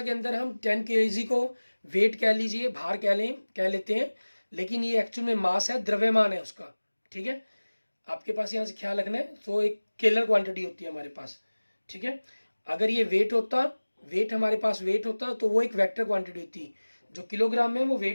के अंदर हम 10 kg को वेट कह लीजिए, भार कह लेते हैं, लेकिन ये एक्चुअल में मास है, द्रव्यमान है उसका, ठीक है। आपके पास यहाँ से ख्याल रखना है, तो एक स्केलर क्वांटिटी होती है हमारे पास, ठीक है। अगर ये वेट होता, वेट हमारे पास वेट होता तो वो एक वेक्टर क्वांटिटी होती, जो किलोग्राम में वो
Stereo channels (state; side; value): inverted; both; correlation -1.00